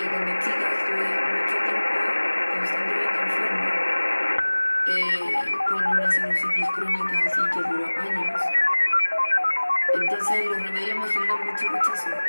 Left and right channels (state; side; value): inverted; both; correlation -1.00